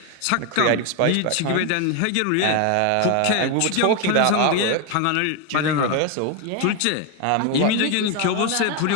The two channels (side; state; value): both; different; correlation 0.01